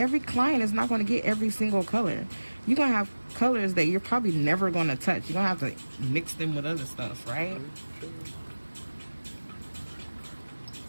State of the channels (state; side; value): inverted; both; correlation -1.00